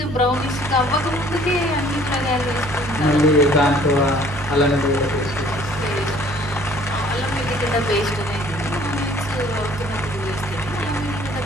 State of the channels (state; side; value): normal; both; correlation 0.56